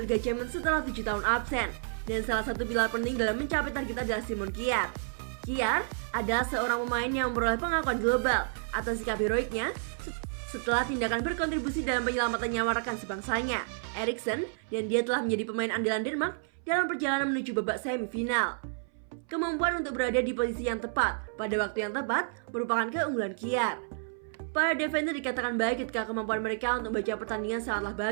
Liga Champions setelah 7 tahun absen, dan salah satu pilar penting dalam mencapai target adalah Simon Kjær. Kjær adalah seorang pemain yang memperoleh pengakuan global atas sikap heroiknya setelah tindakan berkontribusi dalam penyelamatan nyawa rekan sebangsanya, Eriksen, dan dia telah menjadi pemain andalan Denmark dalam perjalanan menuju babak semifinal. Kemampuan untuk berada di posisi yang tepat pada waktu yang tepat merupakan keunggulan Kjær. Para defender dikatakan baik ketika kemampuan mereka untuk membaca pertandingan sangatlah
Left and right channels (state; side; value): silent; left; 58 dB below the other